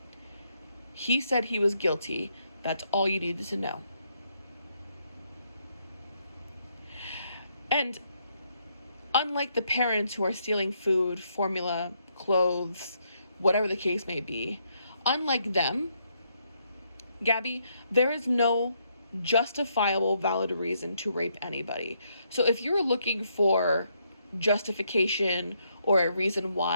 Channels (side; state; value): both; inverted; correlation -0.75